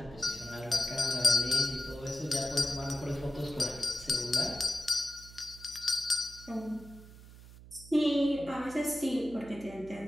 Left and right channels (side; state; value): right; noise; hum, 18 dB below the sound